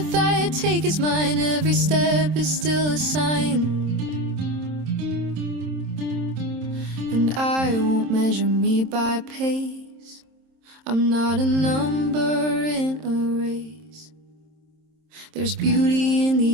I take is mine, every step is still a sign. And I won't measure me by pace, I'm not a number in a race. There's beauty in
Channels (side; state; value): left; late; 27 ms